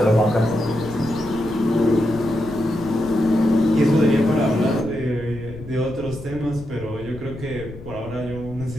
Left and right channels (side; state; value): left; noise; rumble, 14 dB below the sound